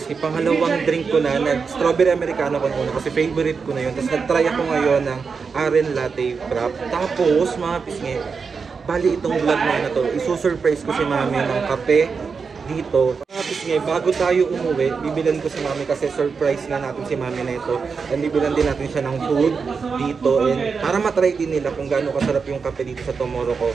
pangalawang drink ko na, nag-strawberry americano ko na kasi favorite ko na yun. Tapos nag-try ako ngayon ng Aren Latte Frap. Tapos mga pisngi, bali itong vlog na to, isusurprise ko si Mami ng kape dito. Mga pisngi, bago tayo umuwi, bibilan ko si Mami kasi surprise na natin si Mami na ito. And bibilan din natin siya ng food dito. And para matry din nila kung gaano kasarap yung kape dito sa Tomorrow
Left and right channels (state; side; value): quieter; left; 5.3 dB